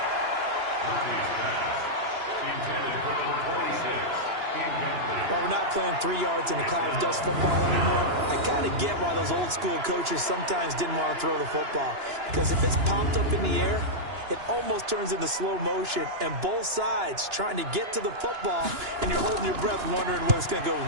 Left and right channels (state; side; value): late; left; 2.9 ms